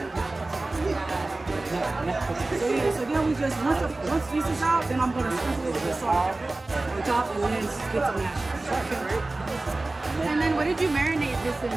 so then we just once this is out, then I'm gonna sprinkle it with the salt on top and then get some mashed. And then what did you marinate this in?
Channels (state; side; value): quieter; left; 3.0 dB